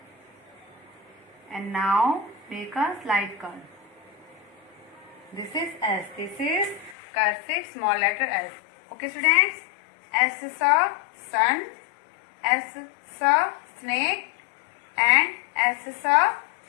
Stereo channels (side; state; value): right; drops out; at 7.0 s